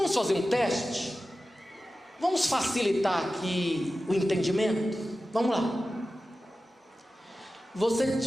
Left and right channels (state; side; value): normal; both; correlation 0.94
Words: fazer um teste? Vamos facilitar aqui o entendimento? Vamos lá. Você